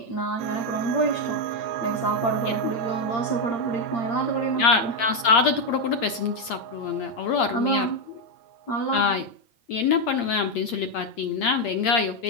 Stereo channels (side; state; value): right; late; 8.7 ms